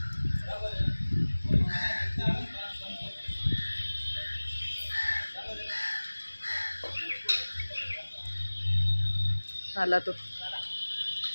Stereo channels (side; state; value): both; inverted; correlation -1.00